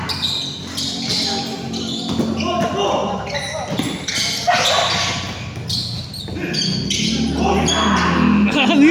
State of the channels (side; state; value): both; identical; correlation 1.00